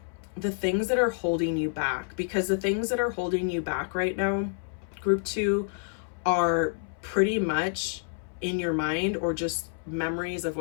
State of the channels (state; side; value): silent; right; 59 dB below the other